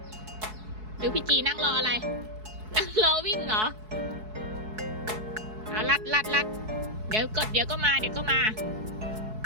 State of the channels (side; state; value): left; late; 4.7 ms